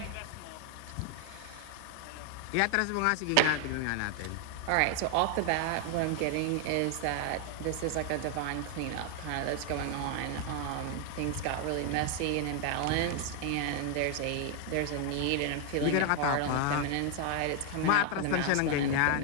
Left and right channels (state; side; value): different; both; correlation 0.00